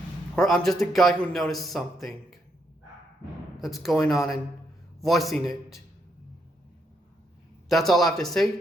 Or I'm just a guy who noticed something that's going on and voicing it. That's all I have to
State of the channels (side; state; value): both; normal; correlation 0.77